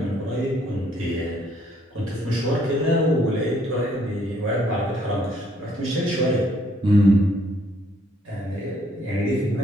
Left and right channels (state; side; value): normal; both; correlation 0.66